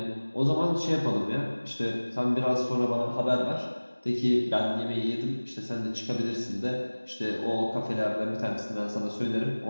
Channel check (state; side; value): inverted; both; correlation -1.00